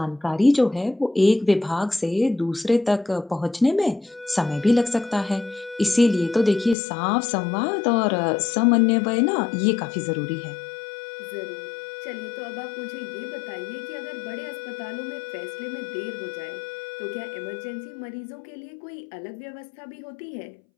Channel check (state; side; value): drops out; right; at 6.8 s